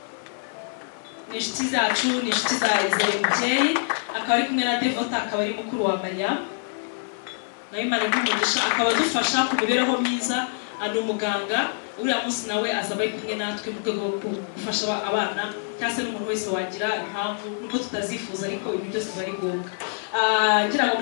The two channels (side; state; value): right; silent; 62 dB below the other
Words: Ni inshuti zacu, ni inshuti za Izere Mubyeyi, akaba ari kumwe na Devota, akaba ari mukuru wa Mariam. Nawe Imana y'umugisha akaba dufasha ku mibereho myiza, ari umuganga. Uriya munsi nawe azaba ari kumwe natwe mu rwego rwo gufasha abana cyangwa se n'umuntu wese wagira impamvu nubwo tutazifuza ariko ibintu byose bari ngombwa. Ngira ngo